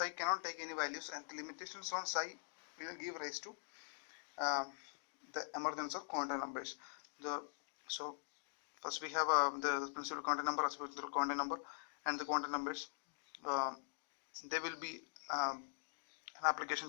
cannot take any values, and the limitations on psi will give rise to the emergence of quantum numbers. So first we have the principal quantum number, absolute quantum number, and the quantum numbers. They will be an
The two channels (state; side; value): silent; right; digital silence